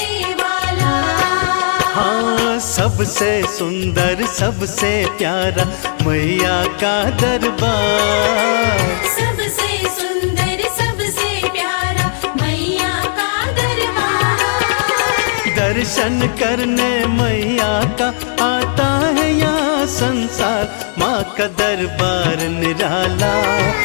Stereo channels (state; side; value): silent; right; digital silence